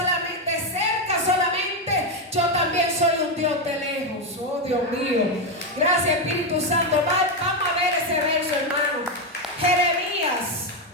de cerca solamente? Yo también soy un Dios de lejos. Oh, Dios mío. Gracias, Espíritu Santo. Vamos a ver ese verso, hermano.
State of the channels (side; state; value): both; normal; correlation 0.08